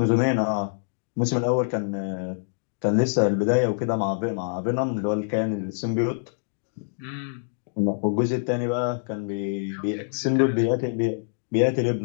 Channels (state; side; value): silent; right; digital silence